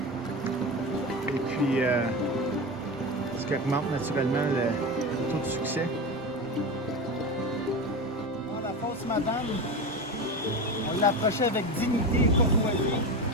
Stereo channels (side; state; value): both; normal; correlation 0.23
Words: Et puis, ce qui augmente naturellement le taux de succès. La fausse madame, on l'approchait avec dignité et courtoisie.